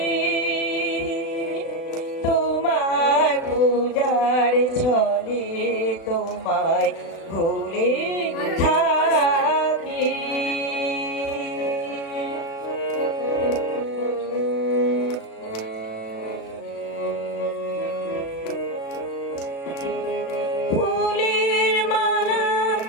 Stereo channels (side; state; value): right; late; 36 ms